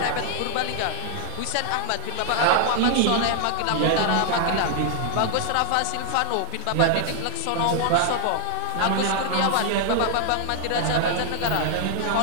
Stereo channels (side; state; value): both; different; correlation 0.00